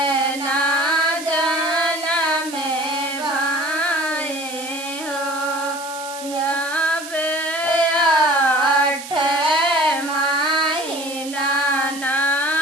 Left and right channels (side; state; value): right; noise; hiss, 12 dB below the sound